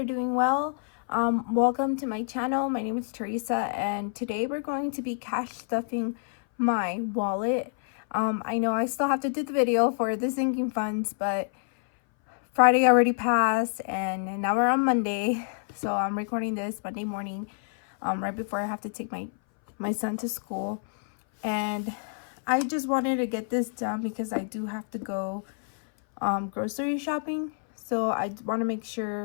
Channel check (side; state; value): right; silent; 58 dB below the other